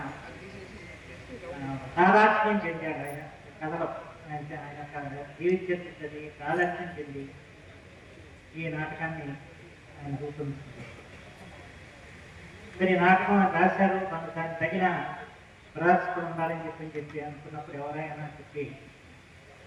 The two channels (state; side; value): identical; both; correlation 1.00